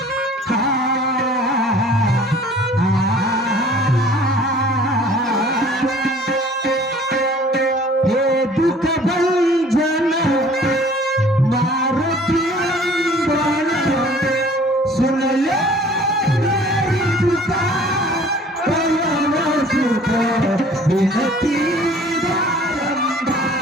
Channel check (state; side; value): normal; both; correlation 0.51